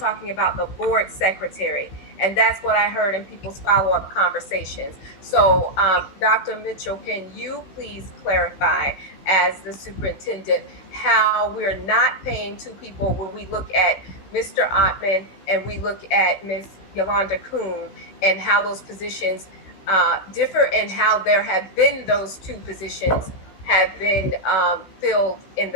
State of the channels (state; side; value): late; right; 16 ms